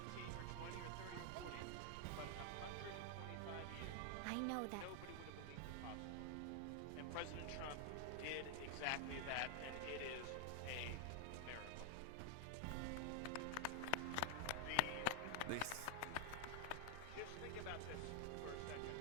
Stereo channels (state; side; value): different; both; correlation 0.00